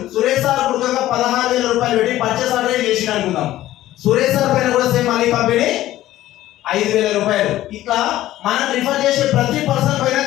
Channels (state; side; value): quieter; right; 14.5 dB